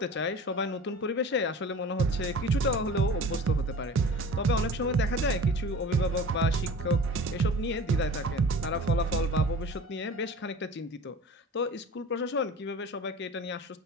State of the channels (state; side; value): normal; both; correlation 0.39